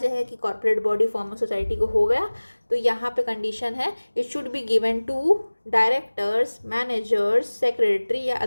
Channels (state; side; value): inverted; both; correlation -1.00